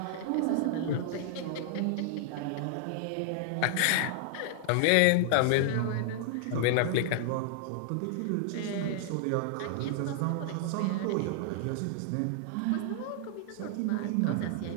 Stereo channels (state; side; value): different; both; correlation -0.01